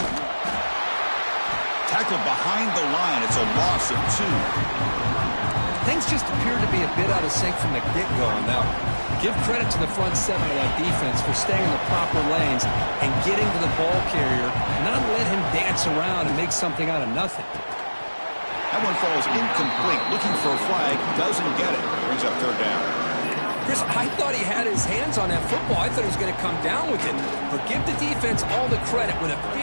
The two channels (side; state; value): both; inverted; correlation -1.00